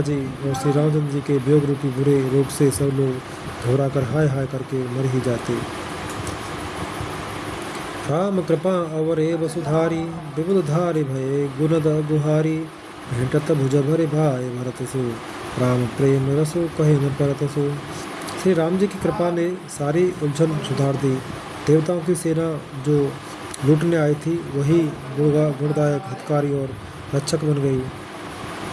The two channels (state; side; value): identical; both; correlation 1.00